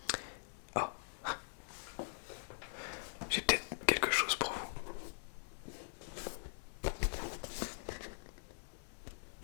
Ah, j'ai peut-être quelque chose pour vous.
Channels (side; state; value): right; silent; digital silence